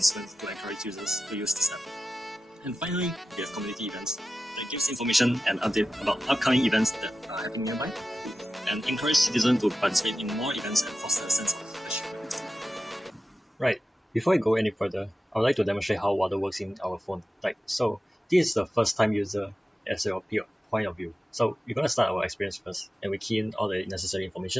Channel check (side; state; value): both; normal; correlation 0.93